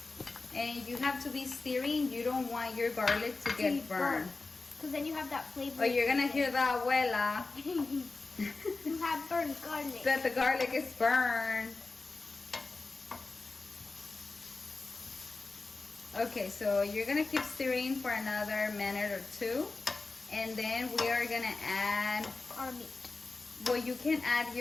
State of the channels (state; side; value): quieter; right; 3.7 dB